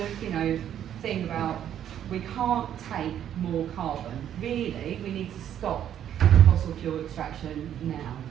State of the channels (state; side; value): quieter; left; 10.2 dB